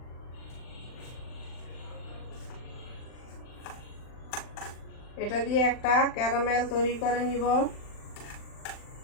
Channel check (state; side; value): late; right; 39 ms